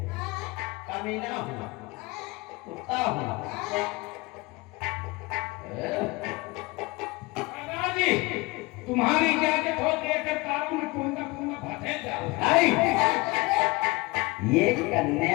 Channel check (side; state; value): right; quieter; 23.6 dB